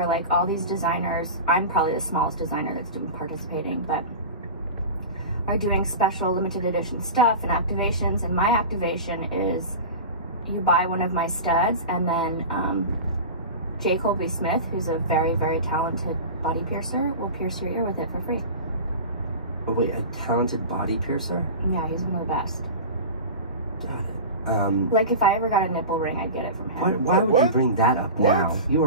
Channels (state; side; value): inverted; both; correlation -0.31